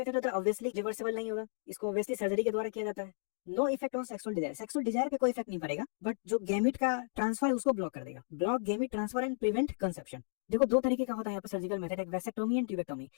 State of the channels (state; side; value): silent; right; digital silence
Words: होता है, ऑब्वियसली रिवर्सिबल नहीं होगा, इसको ऑब्वियसली सर्जरी के द्वारा किया जाता है। No effect on sexual desire, sexual desire पे कोई इफेक्ट नहीं पड़ेगा, बट जो गैमिट का ट्रांसफर है उसको ब्लॉक कर देगा, block gamete transfer and prevent conception. देखो दो तरीके का होता है यहाँ पर सर्जिकल मेथड, एक वैसेक्टोमी एंड ट्यूबेक्टोमी।